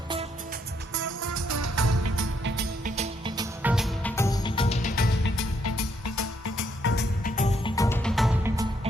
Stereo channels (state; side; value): normal; both; correlation 0.73